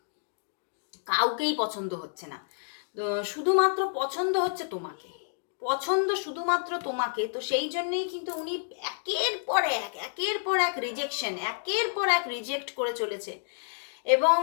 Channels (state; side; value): silent; right; digital silence